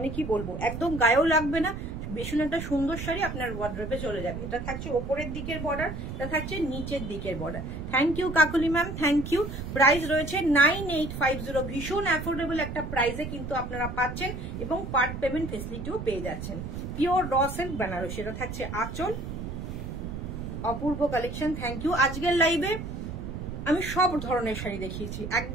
কি বলবো, একদম গায়েও লাগবে না, ভীষণ একটা সুন্দর শাড়ি আপনার ওয়ার্ড্রোবে চলে যাবে। এটা থাকছে ওপরের দিকের বর্ডার, এটা থাকছে নিচের দিকের border. Thank you Kakuli ma'am, thank you. Price রয়েছে 9850। ভীষণ অ্যাফোর্ডেবল একটা প্রাইসে কিন্তু আপনারা পাচ্ছেন এবং পার্ট পেমেন্ট ফেসিলিটিও পেয়ে যাচ্ছেন। Pure raw silk Banarasi. এটা থাকছে আঁচল, অপূর্ব কালেকশন। Thank you. আজকের লাইভে আমি সব ধরনের শাড়ি দেখিয়েছি,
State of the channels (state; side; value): noise; right; rumble, 7 dB below the sound